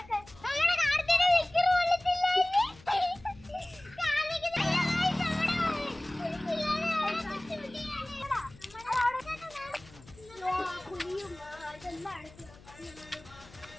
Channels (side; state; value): left; noise; hum, 22 dB below the sound